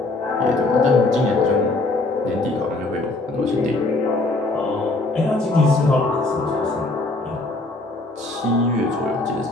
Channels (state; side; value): quieter; right; 3.0 dB